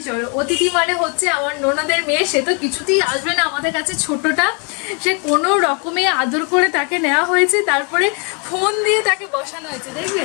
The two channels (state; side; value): quieter; right; 35.5 dB